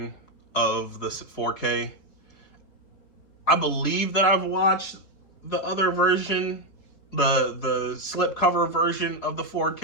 of the 4K. I believe that I've watched the other version, the slipcover version of the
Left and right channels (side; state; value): right; late; 4.7 ms